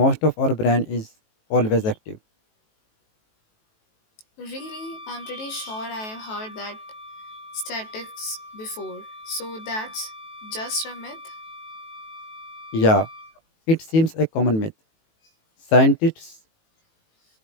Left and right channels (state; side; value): late; right; 18 ms